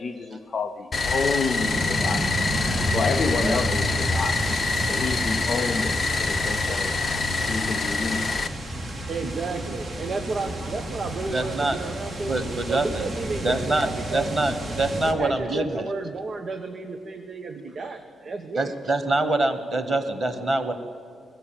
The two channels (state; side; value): normal; both; correlation 0.83